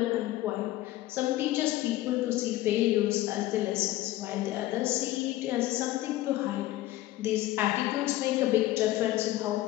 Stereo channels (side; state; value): right; quieter; 15.8 dB